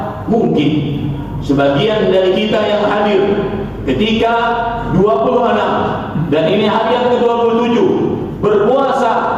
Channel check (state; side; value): identical; both; correlation 1.00